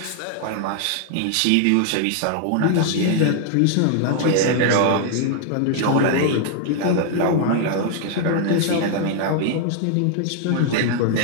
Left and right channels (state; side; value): different; both; correlation 0.00